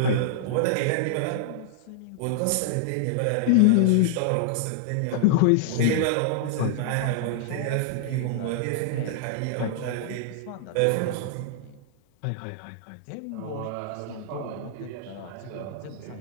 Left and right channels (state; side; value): different; both; correlation -0.01